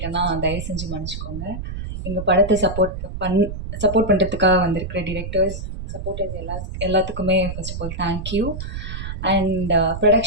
தயவு செஞ்சு மன்னிச்சுக்கோங்க. எங்கள் படத்தை சப்போர்ட் பண்ணுறதுக்காக வந்திருக்கிற டிரெக்டர்ஸ், சப்போர்ட்டர்ஸ் எல்லாத்துக்குமே first of all thank you. And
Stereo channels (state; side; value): noise; right; rumble, 7 dB below the sound